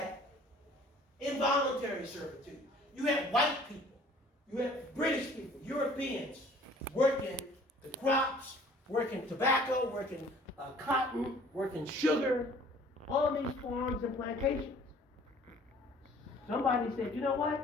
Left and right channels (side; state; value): both; normal; correlation 0.53